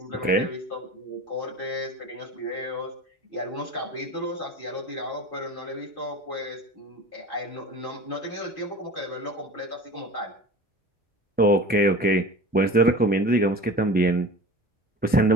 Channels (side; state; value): both; normal; correlation 0.38